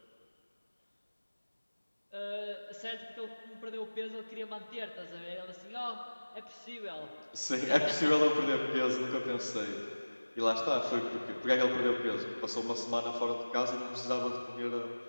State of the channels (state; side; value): inverted; both; correlation -1.00